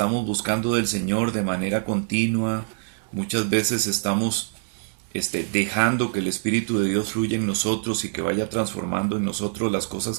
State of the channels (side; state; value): left; silent; digital silence